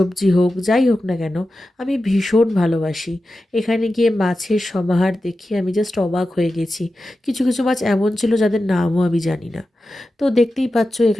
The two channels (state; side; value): normal; both; correlation 0.92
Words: হোক, যাই হোক না কেন, আমি ভীষণ ভালোবাসি। এখানে গিয়ে মাছের সমাহার দেখে আমি জাস্ট অবাক হয়ে গেছি। কিছু কিছু মাছ এমন ছিল যাদের নামও আমি জানি না। তো দেখতেই পাচ্ছ